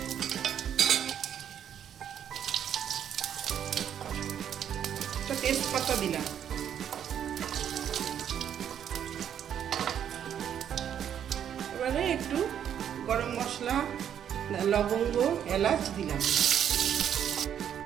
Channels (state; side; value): quieter; left; 9.3 dB